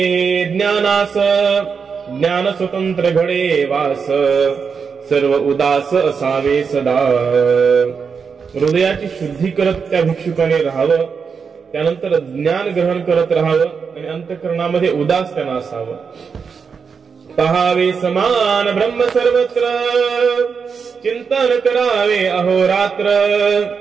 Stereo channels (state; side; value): quieter; left; 5.9 dB